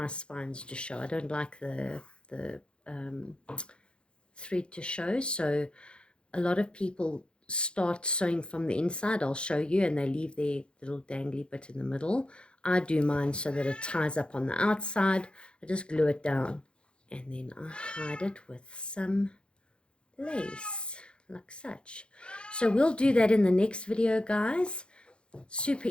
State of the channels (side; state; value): right; late; 0.055 ms